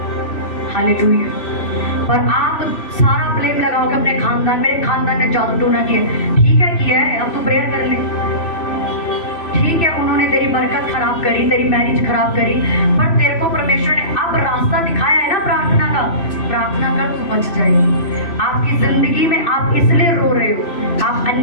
हालेलुया। और आप सारा ब्लेम लगाओगे अपने खानदान, मेरे खानदान ने जादू टोना किया। ठीक है किया है, अब तू प्रेयर कर ले। ठीक है उन्होंने तेरी बरकत खराब करी, तेरी मैरिज खराब करी, पर तेरे को परमेश्वर ने अब रास्ता दिखाया है ना प्रार्थना का। प्रार्थना कर, तू बच जाएगी। आपकी जिंदगी में आप इसलिए रो रहे हो, आप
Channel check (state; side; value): late; right; 3.0 ms